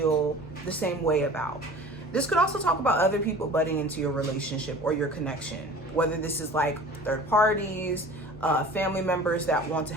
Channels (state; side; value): normal; both; correlation 0.43